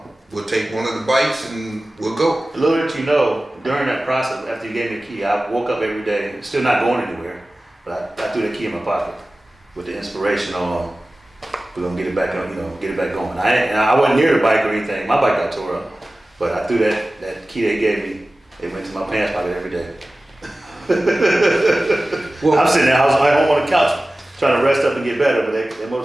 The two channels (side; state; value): both; normal; correlation 0.97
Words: We'll take one of the bikes and we'll go. Little did you know, during that process, after you gave me the key, I woke up every day, still not going anywhere, but I threw the key in my pocket with the inspiration on, we're gonna get it back on, get it back going. I wasn't near the bike or anything. My bike got tore up, but I threw that key they gave me. It went to my pants pocket every day. Well, I'm sitting there, I was at home on the couch trying to rest up and get better, but that